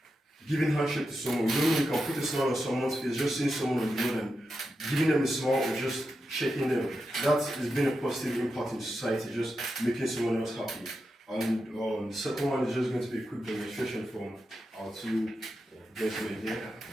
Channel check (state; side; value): normal; both; correlation 0.88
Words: giving handshake to someone. You don't really can put a smile on someone's face, just seeing someone on the road and giving them a smile or just shaking them. That has been a positive impact in society, just making someone else happy. And the second one is just going to be a quick demonstration from our 2 gentlemen here.